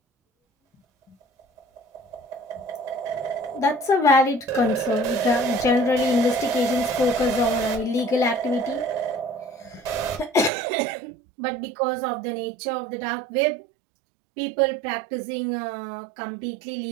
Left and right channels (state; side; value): drops out; left; at 10.5 s